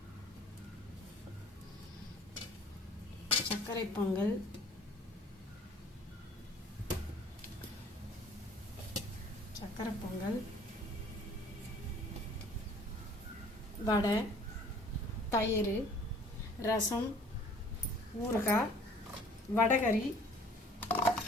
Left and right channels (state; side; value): normal; both; correlation 0.52